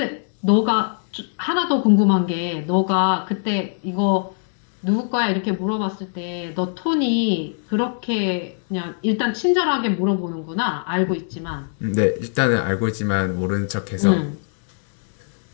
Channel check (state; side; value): silent; right; digital silence